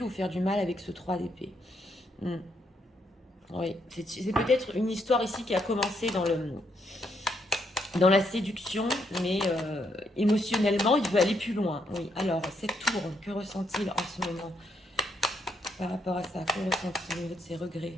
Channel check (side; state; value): both; normal; correlation 0.76